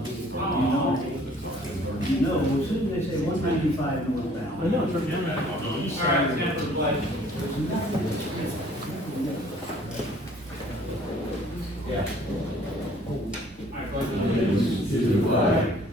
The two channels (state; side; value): normal; both; correlation 0.56